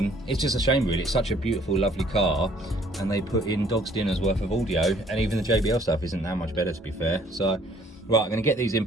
It's just a shame really. It's such a beautiful, lovely car, and they put in dog's dinner's worth of audio, and even the JBL stuff isn't that much better, to be fair. So, right, I'm going to get these in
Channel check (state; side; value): normal; both; correlation 0.60